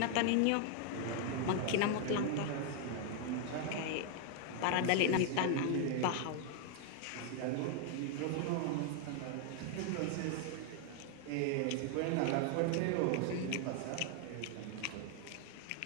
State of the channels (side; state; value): both; different; correlation 0.00